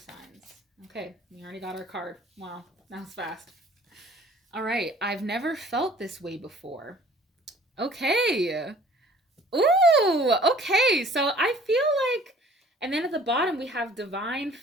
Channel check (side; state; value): both; normal; correlation 0.52